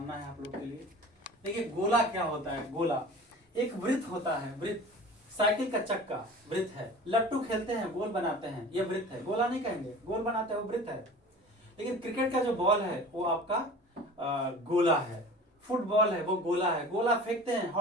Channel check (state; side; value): normal; both; correlation 0.40